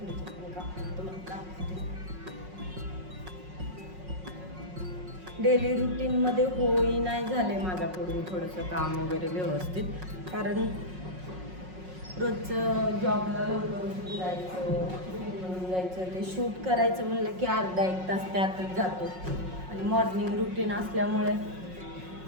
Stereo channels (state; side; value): late; left; 5.5 ms